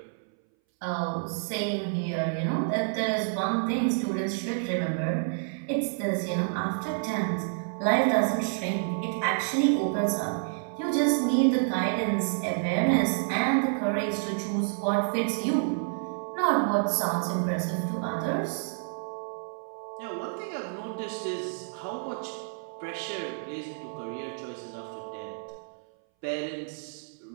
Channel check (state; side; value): silent; left; 59 dB below the other